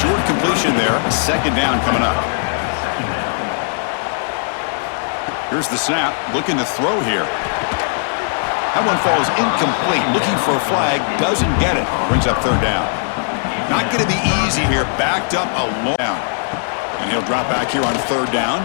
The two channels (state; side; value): silent; right; digital silence